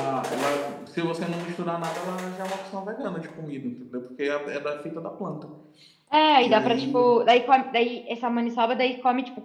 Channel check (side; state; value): both; identical; correlation 1.00